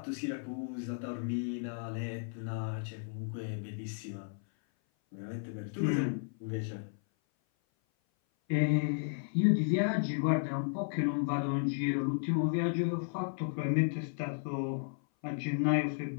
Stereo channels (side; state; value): right; silent; 55 dB below the other